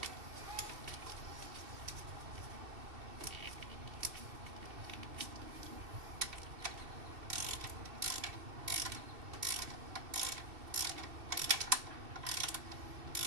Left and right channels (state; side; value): late; left; 2.7 ms